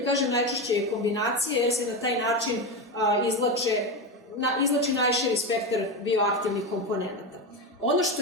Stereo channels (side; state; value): both; normal; correlation 0.17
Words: Kažem, najčešće je kombinacija jer se na taj način izlači najširi spektar bioaktivnih komponenta. Ono